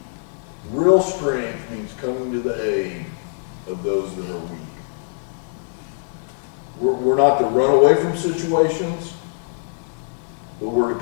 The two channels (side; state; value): right; silent; digital silence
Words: Real strength means coming to the aid of those that are weak. We're not to run away from situations, but we're to